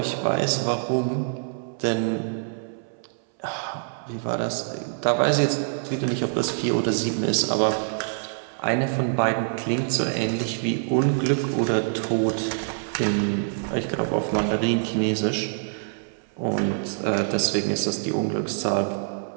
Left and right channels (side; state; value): left; silent; 62 dB below the other